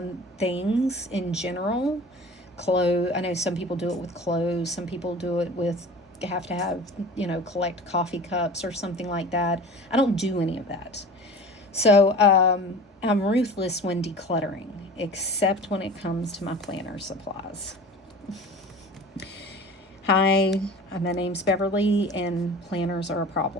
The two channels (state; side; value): normal; both; correlation 0.39